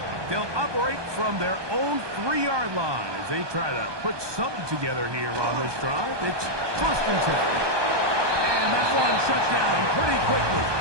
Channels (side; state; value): left; late; 1.2 ms